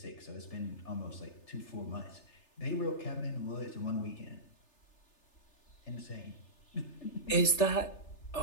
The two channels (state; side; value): late; right; 3.3 ms